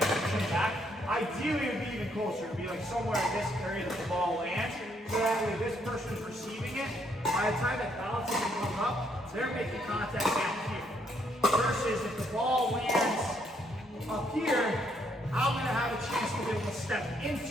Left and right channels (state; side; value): normal; both; correlation 0.71